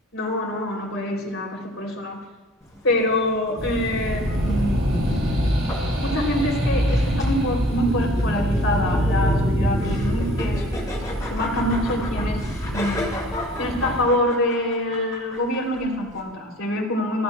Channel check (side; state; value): both; normal; correlation 0.50